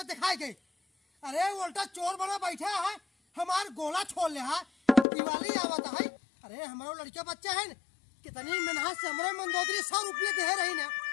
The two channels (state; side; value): drops out; right; at 5.1 s